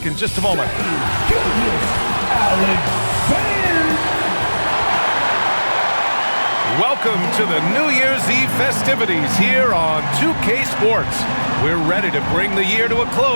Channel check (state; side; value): inverted; both; correlation -1.00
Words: in just a moment. Welcome to the New Year's Eve festivities here on 2K Sports. We're ready to bring the year to a